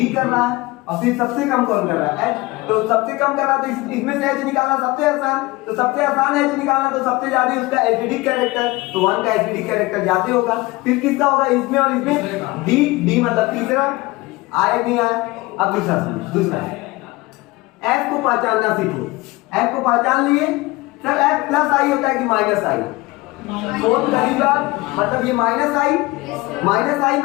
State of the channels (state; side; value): quieter; right; 21.6 dB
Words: कर रहा है, और फिर सबसे कम कौन कर रहा है, H। तो सबसे कम कर रहा है तो इसमें से H निकालना सबसे आसान, तो सबसे आसान H निकालना, तो सबसे ज्यादा उसका एसिडिक कैरेक्टर, तो 1 का एसिडिक कैरेक्टर ज्यादा होगा। फिर किसका होगा, इसमें और इसमें, D मतलब तीसरा, आया नहीं आया? अब दूसरा F को पहचानना सीखो, F को पहचान लिए, सर F प्लस आई होता है कि माइनस आई, फोर्थ कहीं बात, मतलब ये माइनस आई